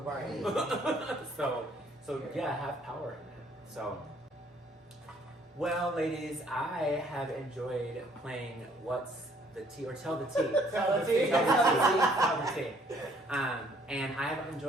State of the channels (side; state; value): both; normal; correlation 0.62